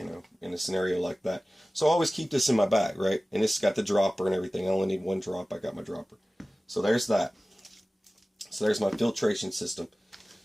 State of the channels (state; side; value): normal; both; correlation 0.97